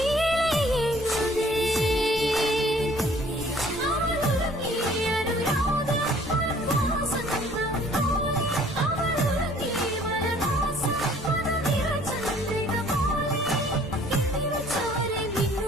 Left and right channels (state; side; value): normal; both; correlation 0.56